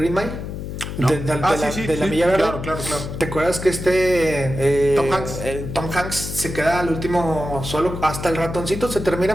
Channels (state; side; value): noise; left; hum, 7 dB below the sound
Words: Mile? No. De la Milla Verde. Claro. ¿Te acuerdas que Tom Hanks se queda al último solo, hasta el ratoncito se